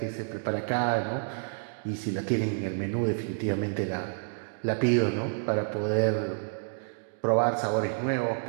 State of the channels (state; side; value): silent; left; digital silence